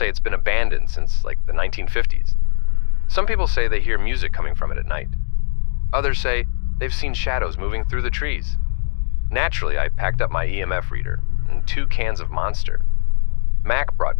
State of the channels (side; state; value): right; silent; digital silence